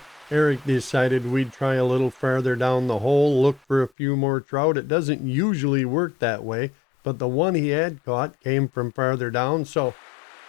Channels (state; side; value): drops out; right; at 3.9 s